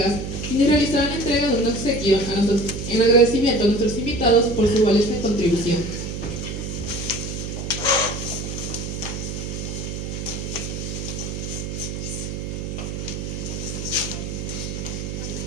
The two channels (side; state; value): right; noise; hum, 5 dB below the sound